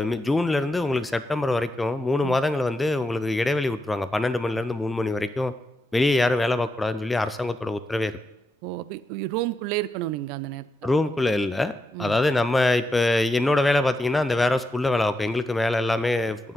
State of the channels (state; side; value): normal; both; correlation 0.85